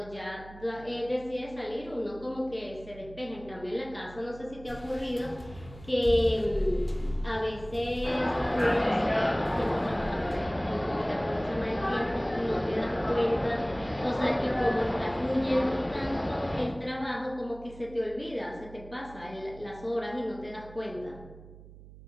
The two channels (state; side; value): noise; right; hum, 18 dB below the sound